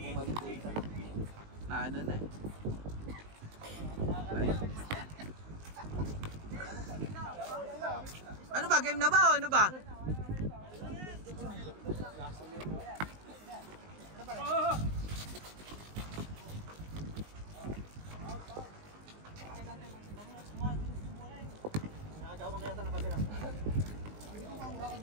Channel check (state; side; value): late; left; 19 ms